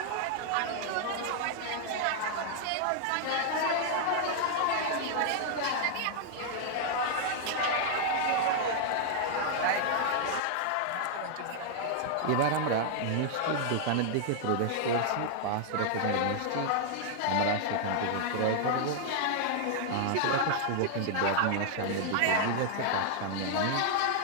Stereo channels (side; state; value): both; different; correlation 0.00